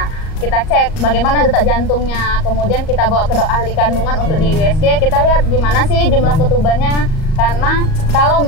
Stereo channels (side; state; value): right; late; 38 ms